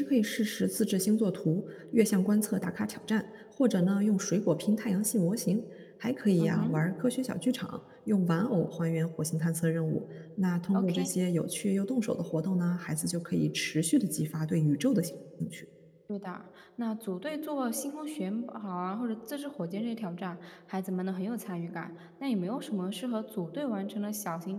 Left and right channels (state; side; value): identical; both; correlation 1.00